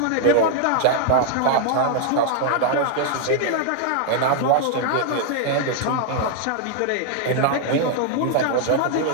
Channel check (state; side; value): different; both; correlation 0.00